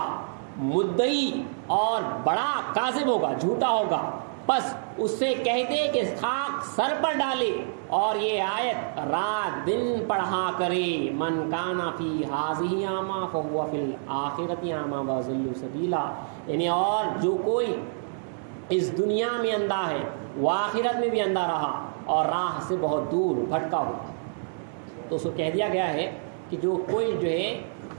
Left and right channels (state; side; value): silent; left; digital silence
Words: مدعی اور بڑا کاذب ہوگا جھوٹا ہوگا. بس اس سے کہہ دے کہ خاک سر پر ڈالے اور یہ آیت رات دن پڑھا کرے من کانا فی ہذہ اعمی فہو فی الآخرۃ اعمی واضل سبیلا. یعنی اور جو کوئی اس دنیا میں اندھا ہے وہ آخرت میں بھی اندھا رہا اور راہ سے بہت دور بھٹکا ہوا. تو اس کو کہہ دیا گیا ہے کہ جو کوئی جو ہے